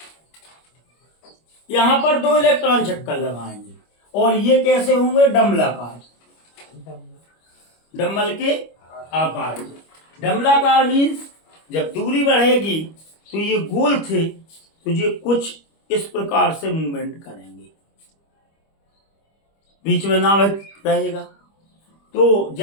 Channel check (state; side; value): late; right; 25 ms